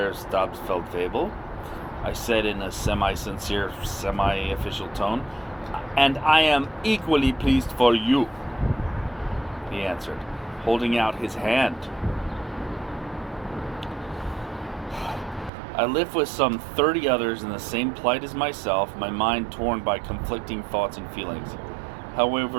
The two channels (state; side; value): drops out; left; at 15.5 s